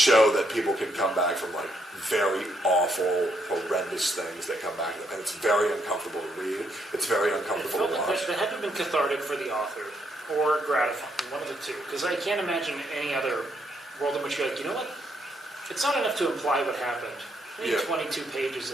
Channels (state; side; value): normal; both; correlation 0.75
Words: that people can come back from like very awful, horrendous things that come back to them. And it's very uncomfortable to read. It's very It uncomfortable felt to like watch. that had to have been cathartic for the author, or gratifying, one of the two. Because I can't imagine any other world in which you're like, you know what? It's not enough to imply what happened. I need Yeah. 22 pages